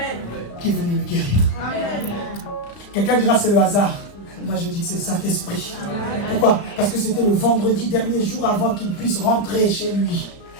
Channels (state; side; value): late; right; 35 ms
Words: qui est venu me guérir. Quelqu'un dira, c'est le hasard. Moi, je dis que c'est le Saint-Esprit. Pourquoi? Parce que c'était le vendredi, dernier jour avant qu'il puisse rentrer chez lui.